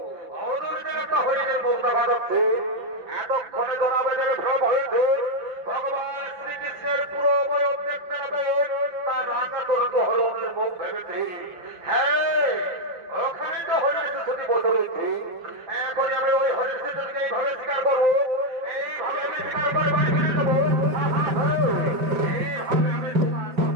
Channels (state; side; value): late; left; 5.9 ms